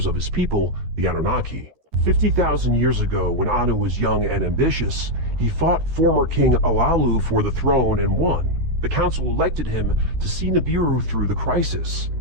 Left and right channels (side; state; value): left; late; 13 ms